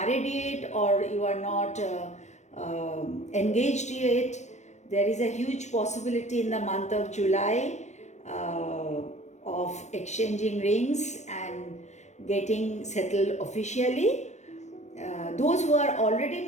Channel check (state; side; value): late; right; 0.34 ms